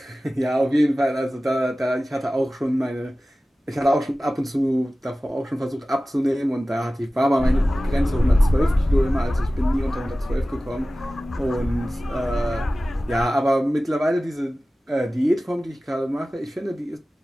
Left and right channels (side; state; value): both; normal; correlation 0.96